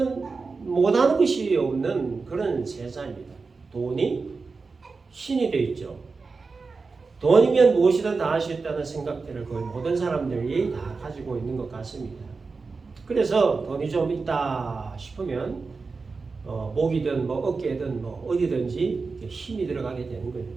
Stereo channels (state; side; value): quieter; left; 4.4 dB